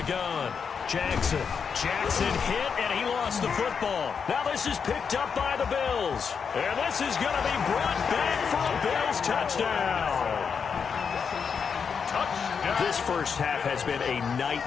gun, Jackson. Jackson hit, and he lost the football. Now this is picked up by the Bills. And this is going to be brought back for a Bills touchdown. This first half has been a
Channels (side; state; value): right; quieter; 6.3 dB